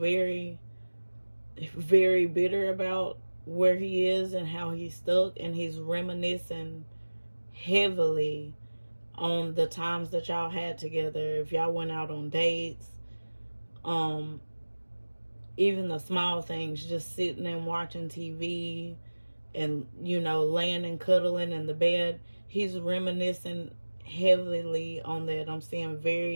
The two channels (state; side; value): inverted; both; correlation -1.00